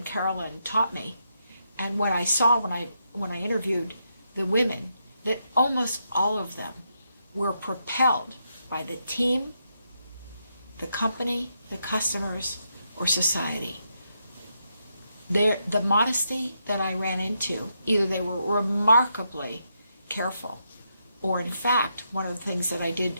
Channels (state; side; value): inverted; both; correlation -0.81